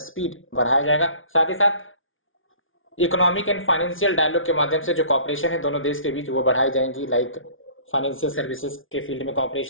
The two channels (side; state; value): right; late; 0.58 ms